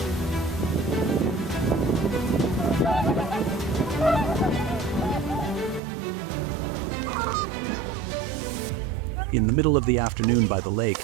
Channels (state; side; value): drops out; left; at 5.8 s